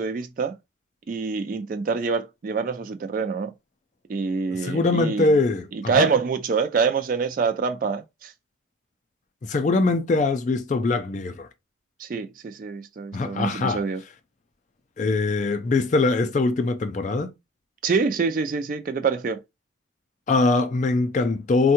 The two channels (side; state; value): both; normal; correlation 0.39